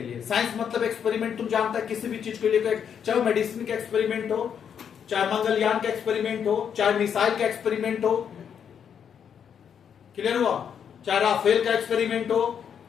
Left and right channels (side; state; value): right; quieter; 7.9 dB